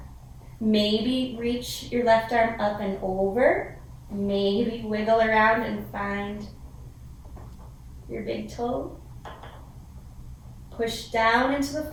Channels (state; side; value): identical; both; correlation 1.00